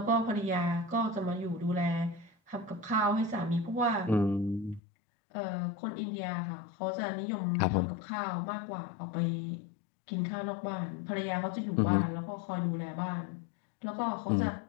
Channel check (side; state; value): right; drops out; at 4.8 s